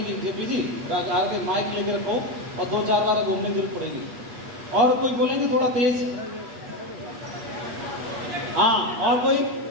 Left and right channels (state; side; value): late; left; 8.3 ms